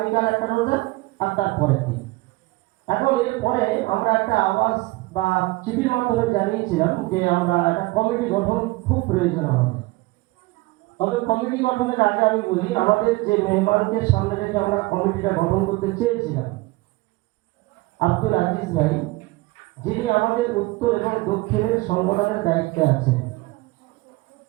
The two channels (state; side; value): quieter; left; 21.6 dB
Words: একটা রোজা, আর তারপরের দিন। এখন এরপরে আমরা একটা আওয়াজ বা চিঠির মাধ্যমে জানিয়েছিলাম যে আমরা একটা কমিটি গঠন খুব প্রয়োজন আমাদের। তবে কমিটি গঠনের আগে আমি বলি, আমাদের যে মেহমানকে সামনে রেখে আমরা কমিটিটা গঠন করতে চেয়েছিলাম, আব্দুল আজিজ ভাই, যিনি আমাদের উত্তর এবং দক্ষিণের সংগঠনের দায়িত্বে আছেন।